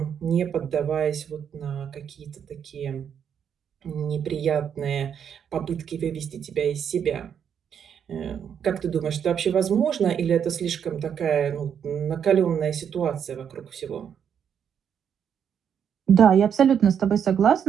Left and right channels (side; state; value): left; quieter; 8.1 dB